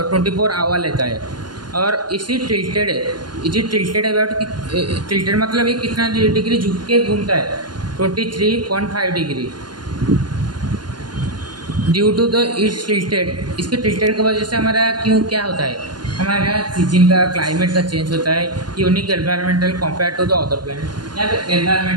आवर लेता है। और इसी टिल्टेड है, इसी टिल्टेड अबाउट टिल्टेड मतलब ये कितना डिग्री झुक के घूमता है? 23.5 degree. Due to the its tilted, इसके टिल्टेड की वजह से हमारा क्या होता है? हमारा सीजन का क्लाइमेट का चेंज होता है। Unique environmental compare to the other planet. यहाँ पे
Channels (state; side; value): late; left; 0.71 ms